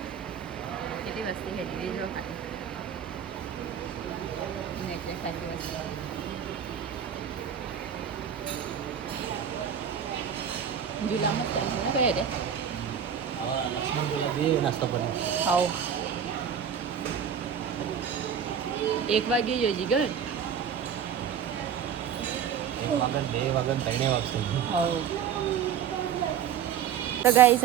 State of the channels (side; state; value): left; quieter; 8.1 dB